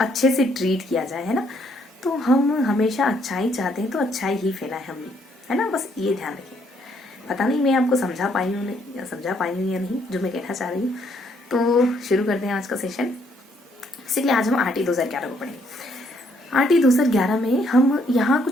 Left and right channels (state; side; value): normal; both; correlation 0.69